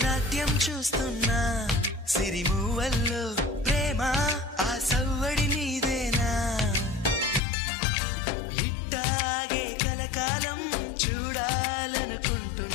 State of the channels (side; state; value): right; drops out; at 7.4 s